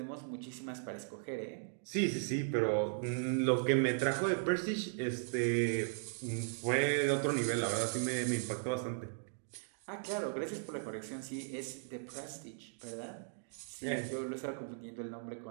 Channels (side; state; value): left; silent; digital silence